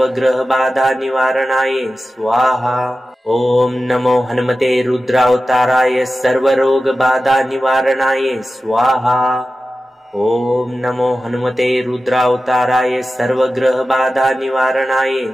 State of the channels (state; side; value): normal; both; correlation 0.94